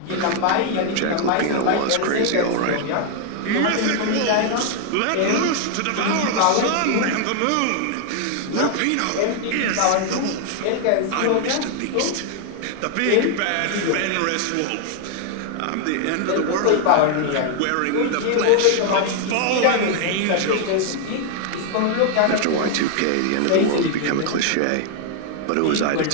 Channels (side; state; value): both; different; correlation 0.00